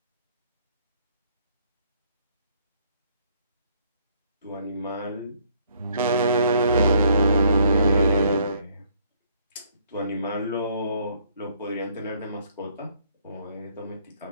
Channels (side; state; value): both; inverted; correlation -0.65